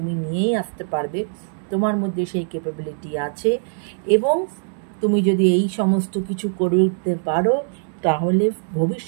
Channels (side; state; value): left; silent; 64 dB below the other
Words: নিয়েই আসতে পারবে। তোমার মধ্যে সেই ক্যাপাবিলিটি আছে এবং তুমি যদি এই সমস্ত কিছু করে উঠতে পারো তাহলে